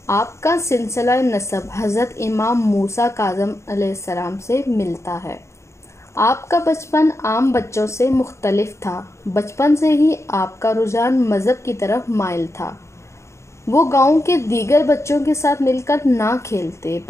आपका सिलसिला नसब हज़रत इमाम मूसा काज़म अलैहिस्सलाम से मिलता है। आपका बचपन आम बच्चों से मुख्तलिफ था। बचपन से ही आपका रुझान मज़हब की तरफ माइल था। वो गांव के दीगर बच्चों के साथ मिलकर ना खेलते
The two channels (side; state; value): right; late; 0.14 ms